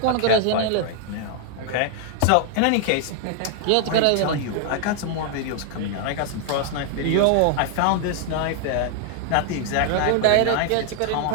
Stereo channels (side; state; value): both; different; correlation 0.00